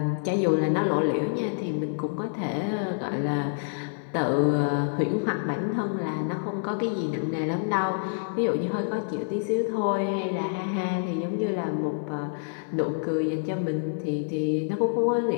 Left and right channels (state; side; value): silent; right; digital silence